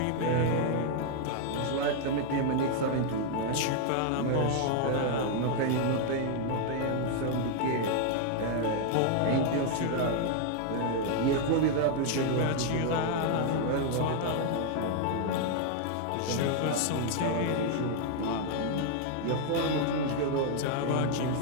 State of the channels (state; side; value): different; both; correlation 0.00